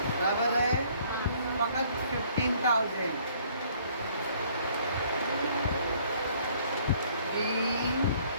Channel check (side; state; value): both; inverted; correlation -0.60